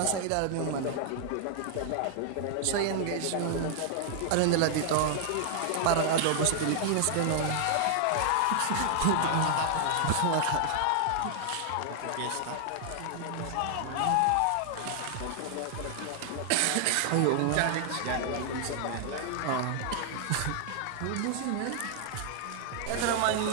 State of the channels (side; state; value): both; different; correlation 0.00